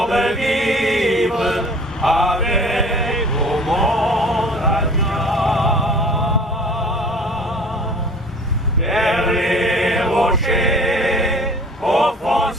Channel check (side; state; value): both; normal; correlation 0.46